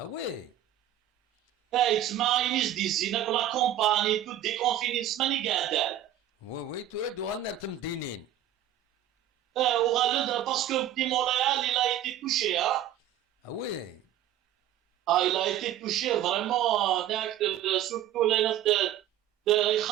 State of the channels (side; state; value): left; quieter; 10.9 dB